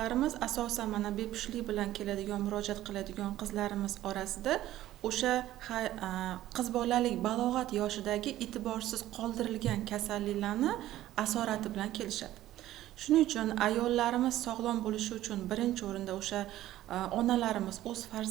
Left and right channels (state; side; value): quieter; left; 14.2 dB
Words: asosan mana bepushtlik bilan keladigan, murojaat qiladigan qizlarimiz orasida o'sha qiz bolalik balog'at yoshidagi e'tiborsiz qoldirilgan kasalliklarni asorati bilan kelishadi. Shuning uchun ayollarimiz sog'lom bo'lishi uchun birinchi o'rinda o'sha onalarimiz o'z